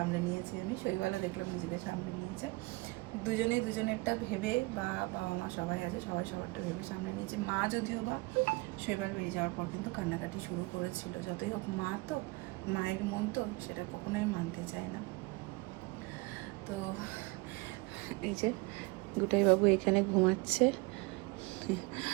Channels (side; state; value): left; quieter; 24.8 dB